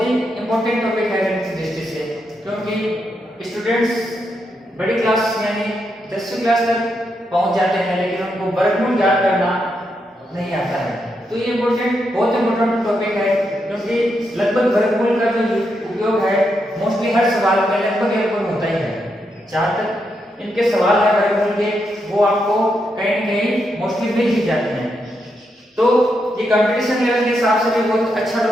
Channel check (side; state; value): both; normal; correlation 0.82